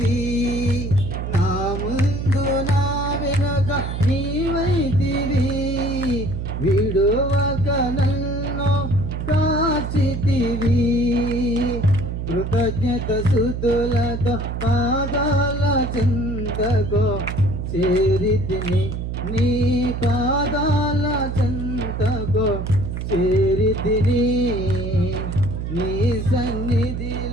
నా ముందు నా వెనుక నీవైతివి విడువక నన్ను కాచితివి కృతజ్ఞత స్తుతులతో పాదాల చెంతకు చేరితిని నీ పాదాల చెంతకు చేరితిని నీ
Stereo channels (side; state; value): right; noise; hum, 4 dB below the sound